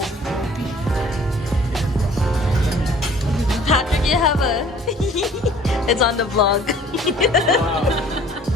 Patrick, you have a... It's on the vlog.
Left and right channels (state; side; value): normal; both; correlation 0.53